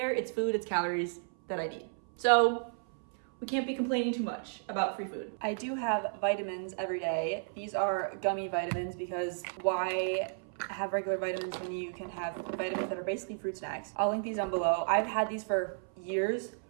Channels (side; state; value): left; silent; 56 dB below the other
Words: It's food, it's calories that I need. So we can't be complaining too much about free food. I do have vitamins every day. These are gummy vitamins because why have regular vitamins when you can have vitamins that are basically fruit snacks? I'll link these down below. I've had these for years,